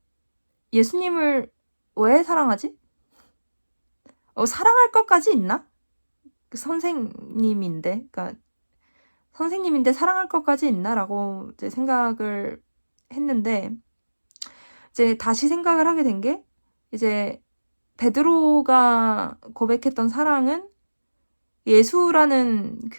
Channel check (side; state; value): both; inverted; correlation -1.00